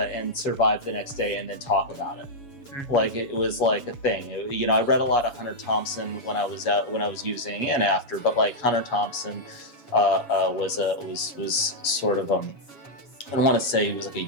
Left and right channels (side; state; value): right; late; 7.2 ms